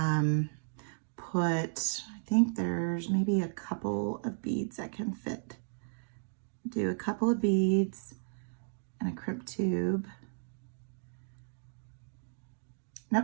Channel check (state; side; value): silent; left; digital silence